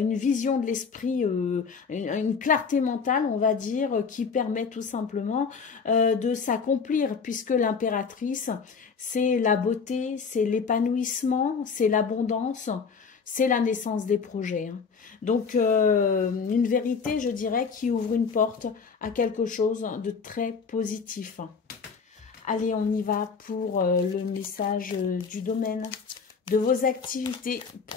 vision de l'esprit, une clarté mentale, on va dire, qui permet tout simplement de s'accomplir, puisque l'impératrice, c'est la beauté, c'est l'épanouissement, c'est l'abondance, c'est la naissance des projets, hein. Donc, une vérité, je dirais, qui ouvre une porte à quelque chose de très positif. Allez, on y va pour le message du domaine de vos activités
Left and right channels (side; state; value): right; quieter; 5.5 dB